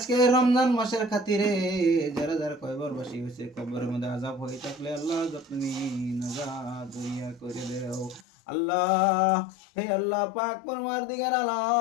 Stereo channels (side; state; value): right; drops out; at 8.2 s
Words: রমজান মাসের খাতিরে যারা যারা কয়বার বাসি হয়েছে, কবরের মধ্যে আযাব হয়ে থাকলে আল্লাহ তুমি নাজাত দরিয়া করে দাও আল্লাহ। হে আল্লাহ পাক পরওয়ারদিগার